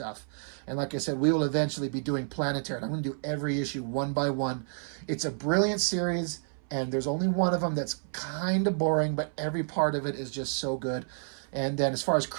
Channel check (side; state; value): left; silent; 58 dB below the other